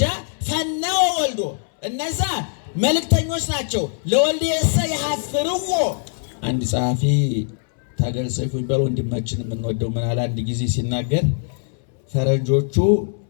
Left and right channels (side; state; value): right; silent; 64 dB below the other